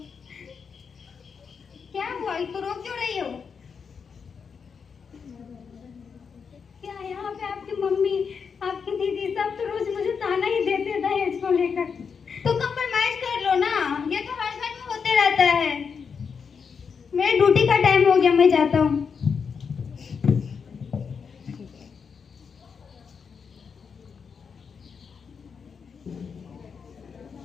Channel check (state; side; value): quieter; right; 6.1 dB